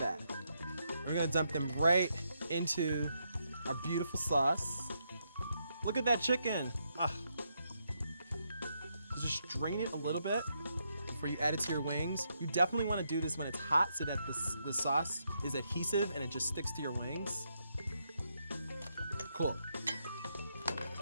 We're gonna dump them right into our beautiful sauce. Look at that chicken. Ah. Just drain it a little bit before you add it to your wings. You definitely wanna do this when it's hot so that the sauce is adhesive and it just sticks to your wings. Cool.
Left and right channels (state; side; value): inverted; both; correlation -0.79